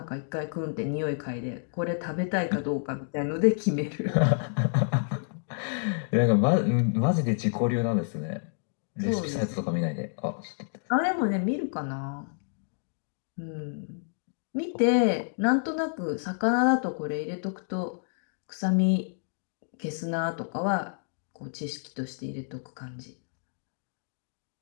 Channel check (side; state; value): right; silent; digital silence